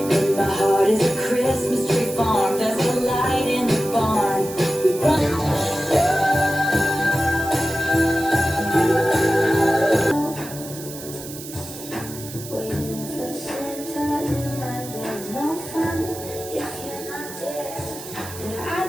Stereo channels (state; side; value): noise; right; hiss, 13 dB below the sound